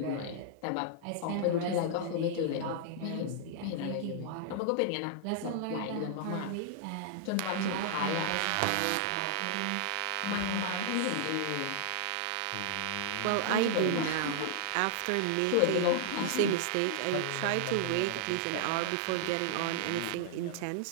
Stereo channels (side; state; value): both; different; correlation 0.00